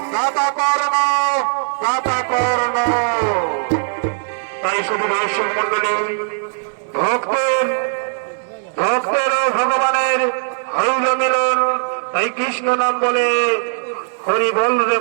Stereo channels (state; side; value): silent; left; 66 dB below the other